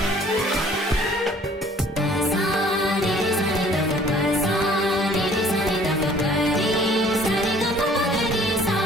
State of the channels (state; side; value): normal; both; correlation 0.55